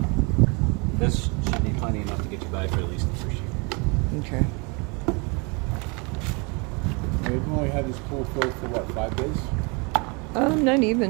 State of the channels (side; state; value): left; quieter; 31.0 dB